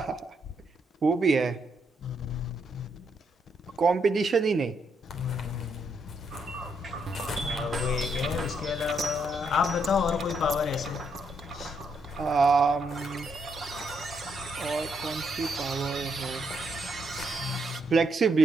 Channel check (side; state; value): both; normal; correlation 0.77